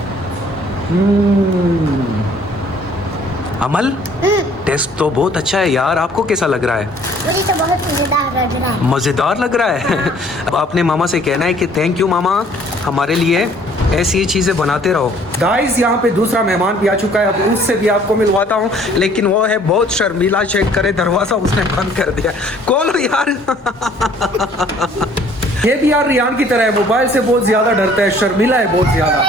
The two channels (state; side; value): normal; both; correlation 0.57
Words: अमल, टेस्ट तो बहुत अच्छा है यार, आपको कैसा लग रहा है? मुझे तो बहुत मजेदार लग रहा है। मज़ेदार लग रहा है। अब आपने मामा से कहना है कि थैंक यू मामा, हमारे लिए ऐसी ही चीज़ें बनाते रहो। गाइस, यहाँ पे दूसरा मेहमान भी आ चुका है, अब उससे भी आपको मिलवाता हूँ, लेकिन वो है बहुत शर्मीला। चेक करे, दरवाज़ा उसने बंद कर दिया। खोलो यार। ये भी यार रियान की तरह है, मोबाइल से बहुत ज़्यादा डरता है, शर्मीला है बहुत ज़्यादा।